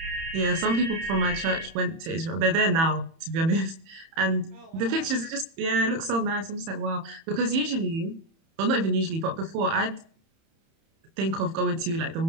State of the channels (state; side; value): late; left; 31 ms